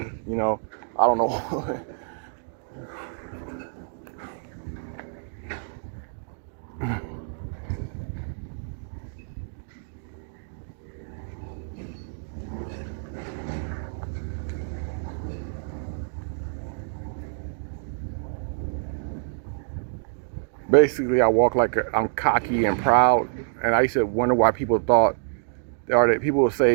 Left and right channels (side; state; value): left; silent; digital silence